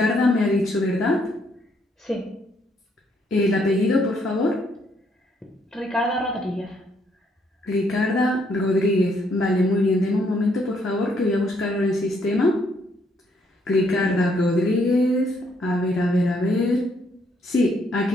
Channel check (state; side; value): normal; both; correlation 0.71